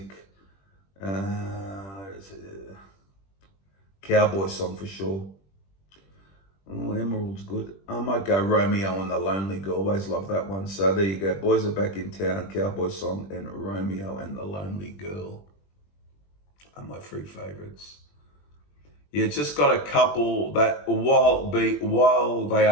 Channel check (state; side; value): late; right; 20 ms